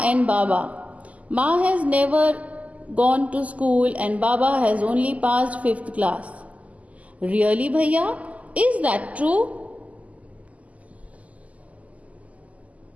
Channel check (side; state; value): left; late; 0.071 ms